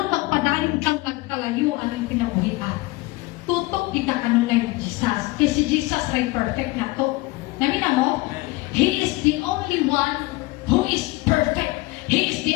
magpadayon kang nagkalayo ang pinabuhian. Tutok di ka kanunay ni Jesus. Kasi si Jesus ay perfect na to. Namina mo? He is the only one who is perfect. He is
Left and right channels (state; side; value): quieter; right; 21.7 dB